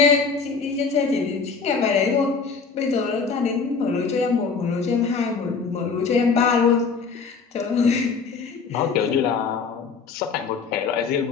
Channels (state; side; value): quieter; right; 5.2 dB